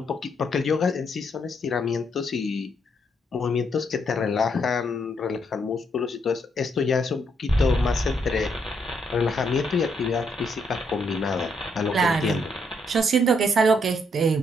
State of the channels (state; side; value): normal; both; correlation 0.75